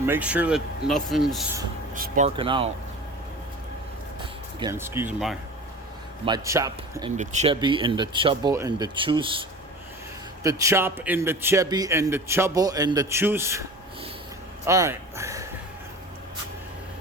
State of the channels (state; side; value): normal; both; correlation 0.36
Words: make sure that nothing's sparking out. Again, excuse my chop and the chubby and the chubble and the choose. The chop and the chubby and the chubble and the choose. All right,